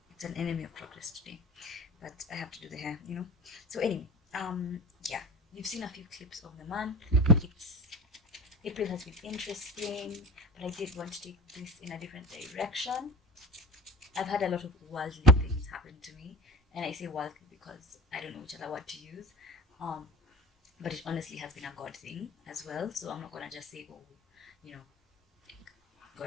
It's an enemy of progress today, but I have to do the hair, So anyway, yeah, you've seen a few clips of the month. It's April has been interesting, but I did want to take this in a different direction. I've had a lot of worldly things happen to me, and I say worldly because I don't know which other word to use. But it honestly has been a God thing as well. So I'm not gonna just say, oh, you know,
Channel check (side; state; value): both; normal; correlation 0.33